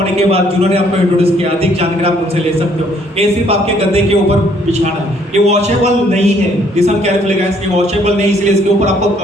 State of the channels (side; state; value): both; normal; correlation 0.64